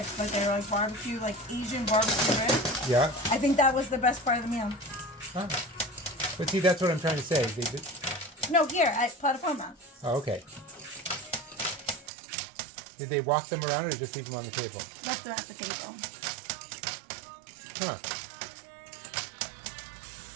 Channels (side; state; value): left; drops out; at 12.1 s